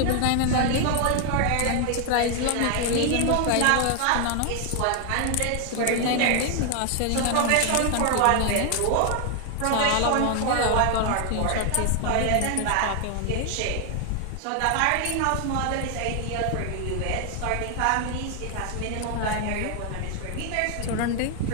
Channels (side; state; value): both; different; correlation 0.01